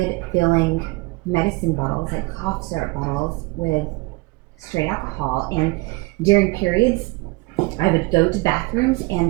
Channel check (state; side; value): quieter; left; 24.8 dB